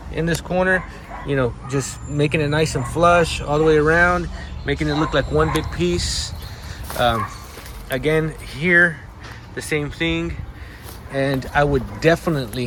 in this corner, you know, just making it nice and flush all the way around, making it look like one big piece. Again, here, the same thing. And I would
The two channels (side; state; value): both; identical; correlation 1.00